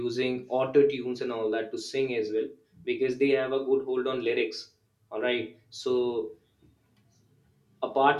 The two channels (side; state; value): both; identical; correlation 1.00